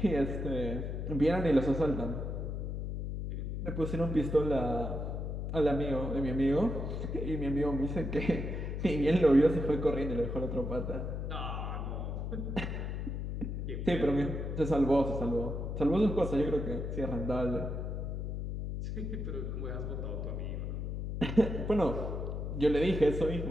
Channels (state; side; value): noise; left; hum, 4 dB below the sound